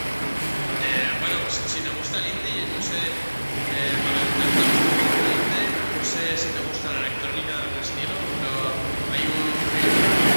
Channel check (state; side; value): inverted; both; correlation -1.00